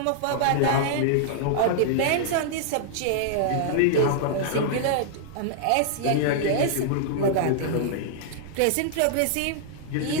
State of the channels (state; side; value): different; both; correlation -0.01